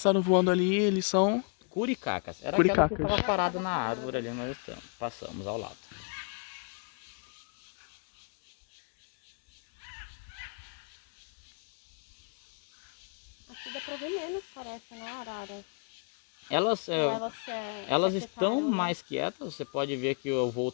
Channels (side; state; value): right; quieter; 38.4 dB